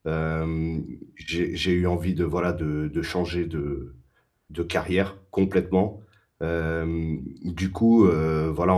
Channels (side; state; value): both; identical; correlation 1.00